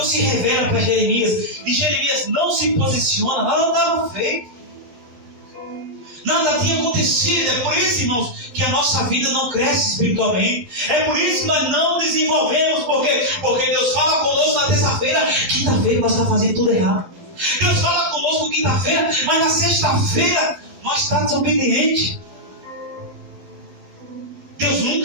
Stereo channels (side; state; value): left; late; 12 ms